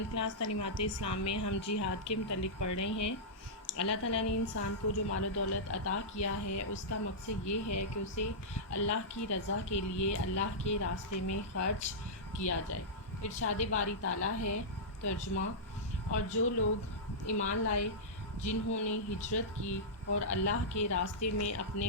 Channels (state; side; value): normal; both; correlation -0.12